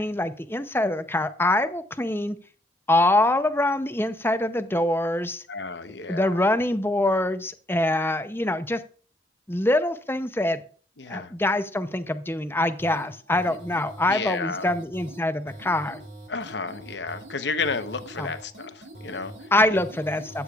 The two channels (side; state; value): both; normal; correlation 0.67